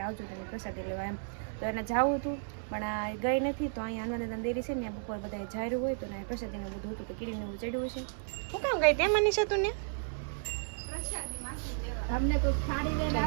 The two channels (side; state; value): left; silent; 56 dB below the other